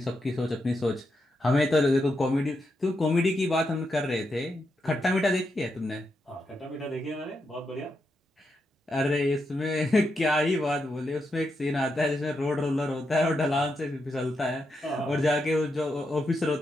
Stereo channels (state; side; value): normal; both; correlation 0.84